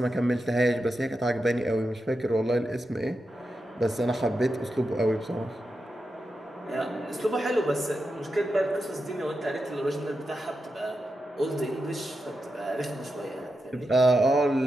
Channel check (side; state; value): both; normal; correlation 0.88